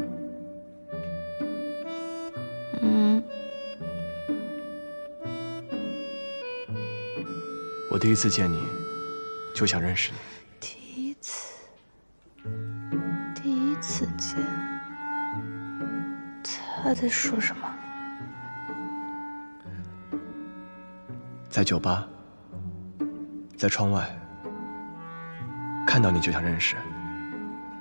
我第一次见你，就想认识你。第一次见，他在说什么？在酒吧，在窗外，看到你就想认识。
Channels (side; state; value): both; inverted; correlation -1.00